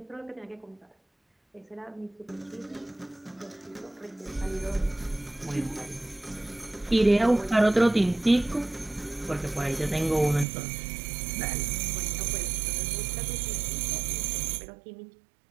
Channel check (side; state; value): left; drops out; at 10.5 s